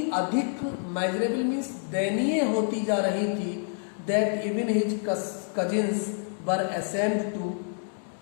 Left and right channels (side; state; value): right; silent; 59 dB below the other